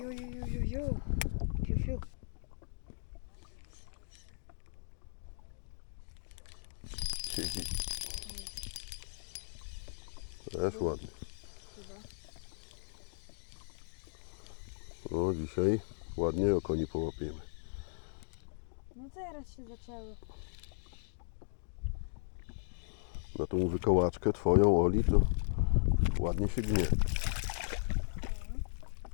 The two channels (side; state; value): right; silent; digital silence